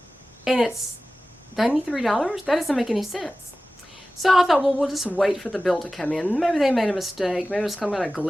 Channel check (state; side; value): normal; both; correlation 0.96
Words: $93? That doesn't make any sense. So I thought, well, we'll just wait for the bill to come in. Maybe they made a mistake. Maybe it was some kind of